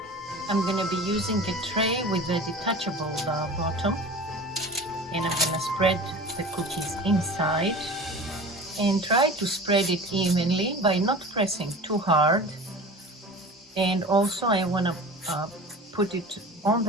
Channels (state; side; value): normal; both; correlation 0.37